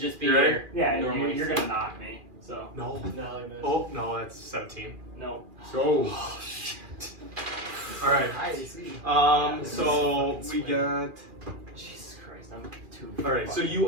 be You ready? your Yeah, normal you're AC. gonna knock me. So. No. No, you missed. Oh no, that's 17. No. So. All right. Nice. So we got. Jesus Christ, I'm too. All right. So you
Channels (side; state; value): left; late; 2.3 ms